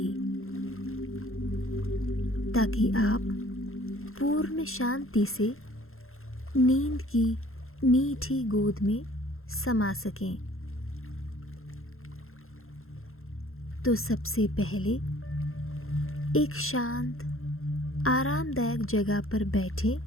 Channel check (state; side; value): late; right; 0.61 ms